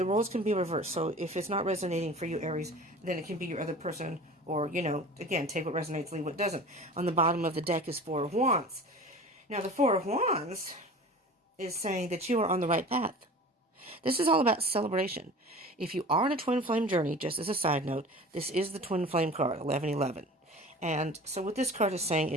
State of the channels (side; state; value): both; normal; correlation 0.39